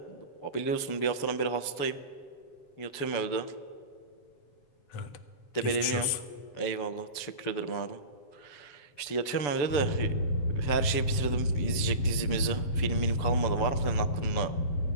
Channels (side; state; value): right; late; 6.9 ms